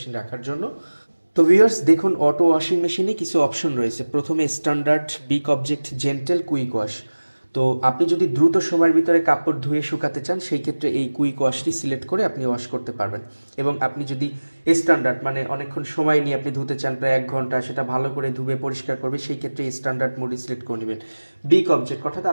রাখার জন্য। তো ভিউয়ার্স, দেখুন অটো ওয়াশিং মেশিনে কিছু অপশন রয়েছে। প্রথমে standard, big object, gentle, quick wash. তো আপনি যদি দ্রুত সময়ের ভিতরে কাপড় ধুয়ে শুকাতে চান সেই ক্ষেত্রে এই কুইক ওয়াশটি সিলেক্ট করে আপনি ওয়াশ করতে পারবেন। এবং আপনি যদি স্ট্যান্ডার্ড মানে অনেকক্ষণ সময় নিয়ে আপনি ধুতে চান, প্রায় 1 ঘন্টা, সেটা ভালো করে ধুয়ে পরিষ্কার করবে, সেই ক্ষেত্রে স্ট্যান্ডার্ড মোডে সিলেক্ট করে নেবেন। বিগ অবজেক্ট, অর্থাৎ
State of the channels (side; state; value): both; inverted; correlation -1.00